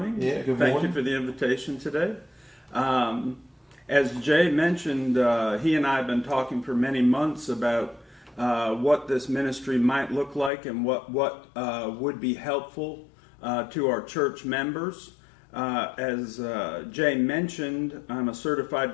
Yeah, good morning. Thank you for the invitation today. As Jay mentioned, he and I have been talking for many months about what this ministry might look like and what would be helpful to our church members. As Jay mentioned, I'm a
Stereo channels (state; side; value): drops out; right; at 10.5 s